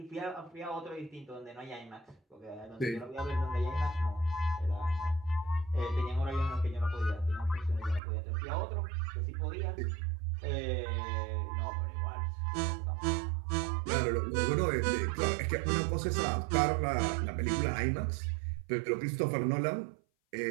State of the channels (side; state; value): left; drops out; at 8.0 s